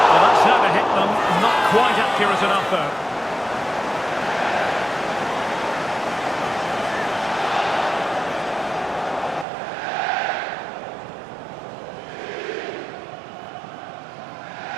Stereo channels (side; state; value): left; drops out; at 9.5 s